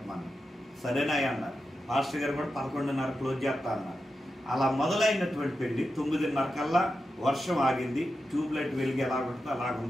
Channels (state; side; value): normal; both; correlation 0.90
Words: సరేనా అన్నారు. పాస్టర్ గారు కూడా 11:30 క్లోజ్ చేస్తా అన్నారు. అలా మొదలైనటువంటి పెళ్లి 9:30 కల్లా వర్షం ఆగింది. ట్యూబ్ లైట్ వెలుగు ఎలా ఉంటుందో